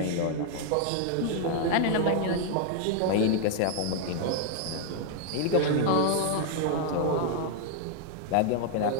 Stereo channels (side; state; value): both; different; correlation 0.00